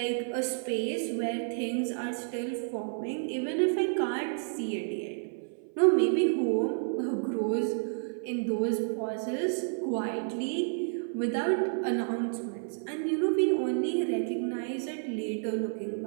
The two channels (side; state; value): left; silent; 55 dB below the other